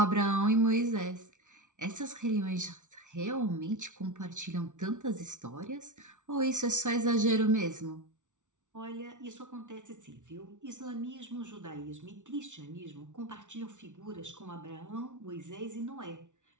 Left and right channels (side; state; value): left; late; 0.86 ms